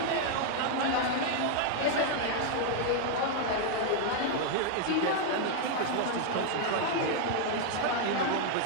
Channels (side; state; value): both; different; correlation 0.00